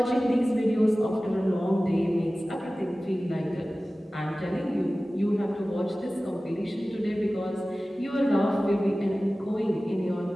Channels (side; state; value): both; normal; correlation 0.97